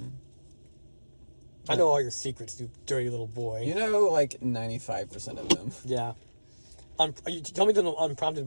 I know all your secrets, you dirty little boy. You know, like 95% of them. Yeah. You tell me them unprompted,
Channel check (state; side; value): inverted; both; correlation -1.00